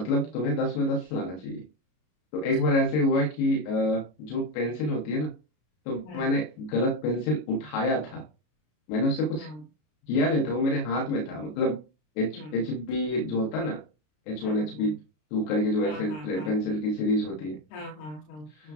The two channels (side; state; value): right; late; 33 ms